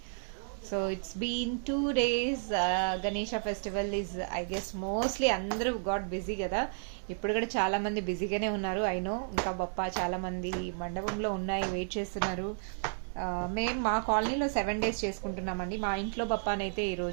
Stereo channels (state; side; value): silent; left; digital silence